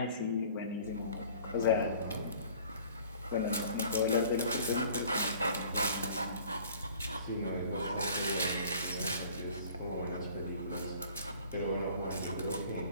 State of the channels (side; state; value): both; inverted; correlation -0.50